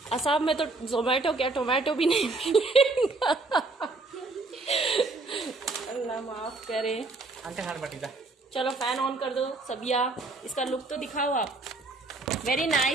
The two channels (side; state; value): left; quieter; 3.4 dB